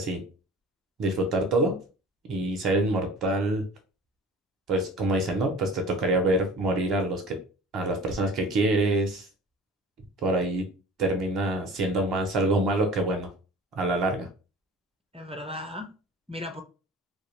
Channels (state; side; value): normal; both; correlation 0.42